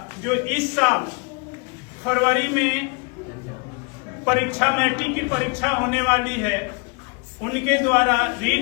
जो इस साल फरवरी में परीक्षा, मैट्रिक की परीक्षा होने वाली है, उनके द्वारा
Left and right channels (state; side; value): quieter; right; 32.1 dB